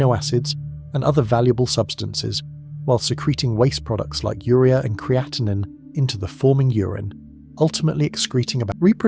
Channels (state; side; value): identical; both; correlation 1.00